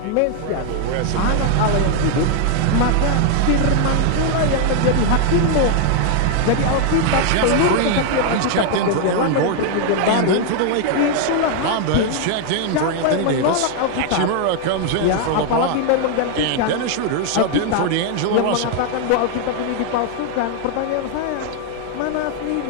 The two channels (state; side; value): different; both; correlation 0.00